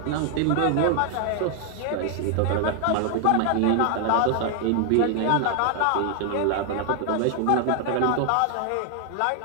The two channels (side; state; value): both; different; correlation 0.00